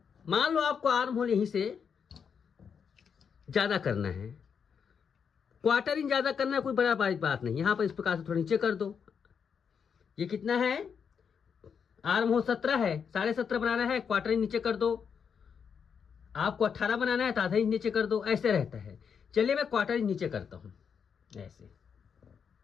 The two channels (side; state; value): right; quieter; 6.8 dB